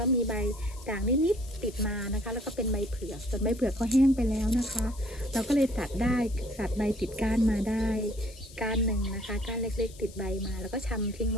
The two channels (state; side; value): noise; left; hiss, 20 dB below the sound